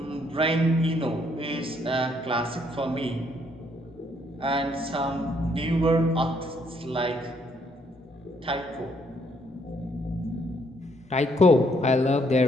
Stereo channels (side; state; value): both; normal; correlation 0.69